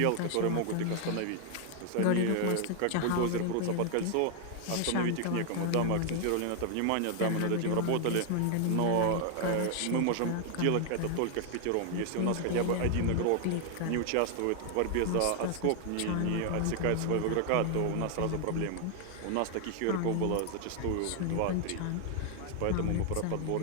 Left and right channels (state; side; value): different; both; correlation 0.00